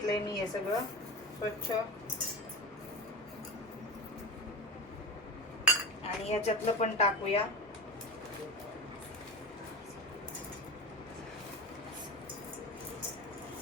मी हे सगळं स्वच्छ. आणि याच्यातलं पण टाकूया.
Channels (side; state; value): both; normal; correlation 0.27